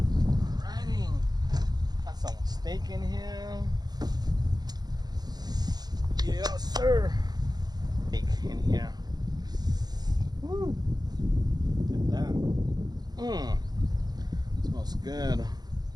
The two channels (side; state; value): left; late; 0.19 ms